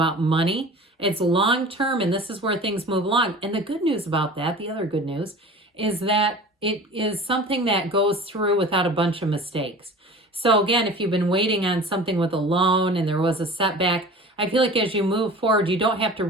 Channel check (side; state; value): both; normal; correlation 0.39